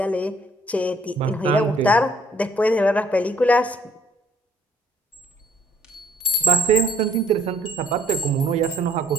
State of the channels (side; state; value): both; normal; correlation 0.59